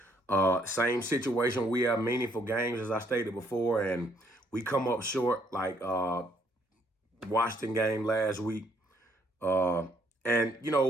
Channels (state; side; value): normal; both; correlation 0.68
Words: same situation. We have meaningful games, as I stated before, and we come up short, like Washington game last week. But